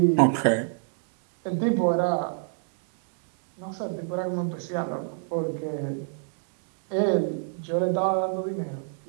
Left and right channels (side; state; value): left; silent; digital silence